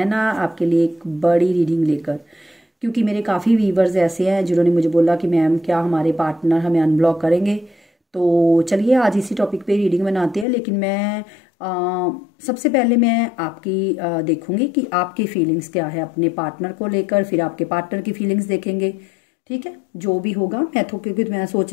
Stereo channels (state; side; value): drops out; right; at 10.5 s